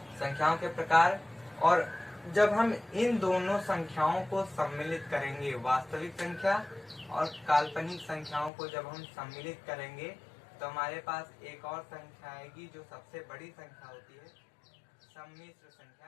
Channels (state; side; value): drops out; right; at 8.5 s